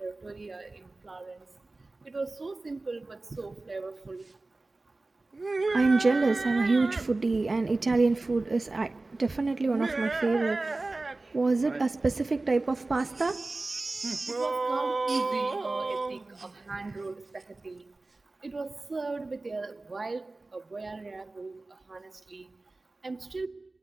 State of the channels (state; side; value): quieter; left; 3.2 dB